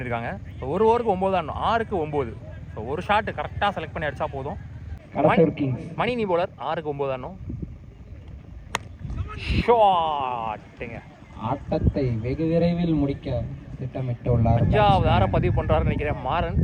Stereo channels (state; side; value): identical; both; correlation 1.00